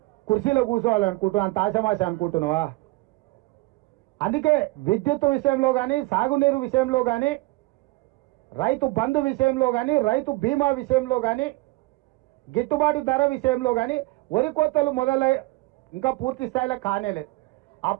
కుర్చీలో కూర్చోవాలనుకుంటున్నావు, అంత ఆశమాశ అనుకుంటున్నావా? అందుకే విద్యుత్ విషయంలో కానీ, సాగునీరు విషయంలో కానీ, రైతు బంధు విషయంలో కానీ, రైతు బీమా విషయంలో కానీ, గిట్టుబాటు ధర విషయంలో కానీ వరి కోతలు మొదలై ఇంకా పూర్తి స్థాయిలో కానేలేదు.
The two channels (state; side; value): quieter; left; 21.8 dB